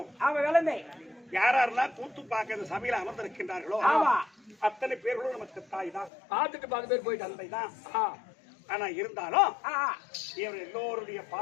யாரெல்லாம் கூத்து பார்க்க இந்த சபையில அமர்ந்திருக்கின்றார்களோ அத்தனை பேர்களும் நமக்கு தாய் தான். பார்த்துட்டு 10 பேர் போயிட்டு தந்தை தான். ஆனா இருந்தாலும் இவர் எல்லோருடைய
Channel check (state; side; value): drops out; right; at 6.1 s